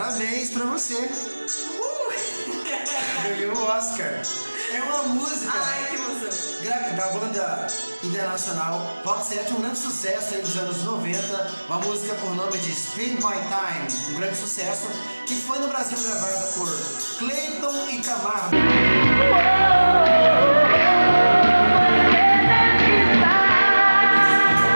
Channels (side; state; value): both; inverted; correlation -1.00